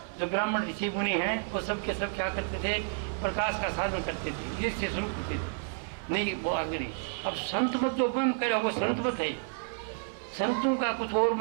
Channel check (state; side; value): silent; left; 57 dB below the other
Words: जो ब्राह्मण ऋषि मुनि हैं वो सब के सब क्या करते थे, प्रकाश का साधन करते थे, जिससे शुरू करते थे, नहीं वो आगे नहीं। अब संत मत जो उपम करे वो संत मत है, संतों का कुछ और